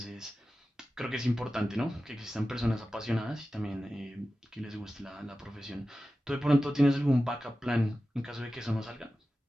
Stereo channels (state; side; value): normal; both; correlation 0.94